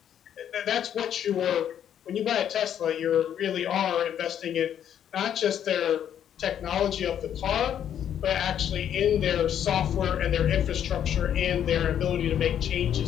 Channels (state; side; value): quieter; right; 9.6 dB